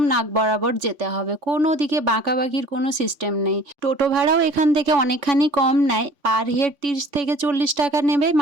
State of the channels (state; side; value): late; left; 3.5 ms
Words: নাক বরাবর যেতে হবে, কোনো দিকে বাঁকাবাকির কোনো সিস্টেম নেই। টোটো ভাড়াও এখান থেকে অনেকখানি কম নেয়, পার হেড 30 থেকে 40 টাকা নেবে